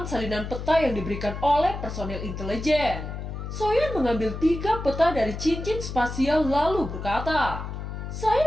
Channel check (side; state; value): left; noise; hum, 7 dB below the sound